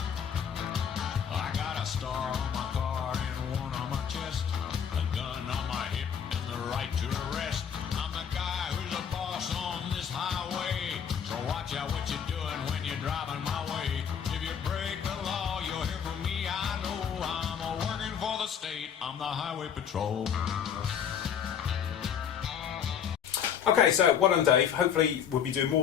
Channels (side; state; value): right; quieter; 8.0 dB